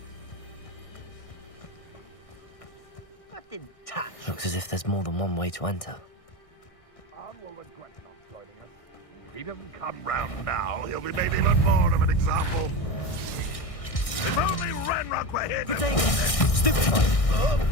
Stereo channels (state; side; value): late; right; 1.6 ms